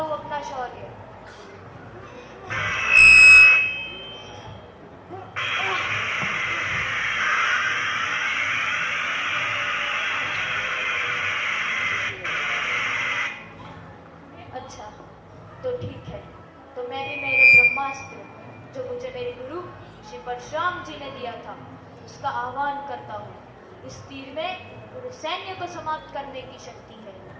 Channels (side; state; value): both; identical; correlation 1.00